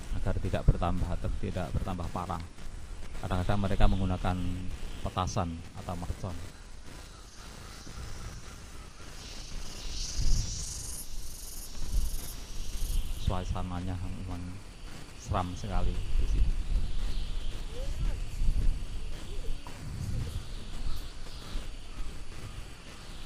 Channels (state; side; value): identical; both; correlation 1.00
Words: agar tidak bertambah parah. Kadang-kadang mereka menggunakan petasan atau mercon. Suasananya memang seram sekali di sini.